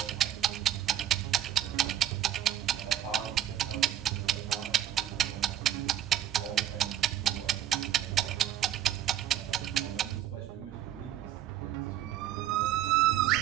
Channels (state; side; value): quieter; left; 11.3 dB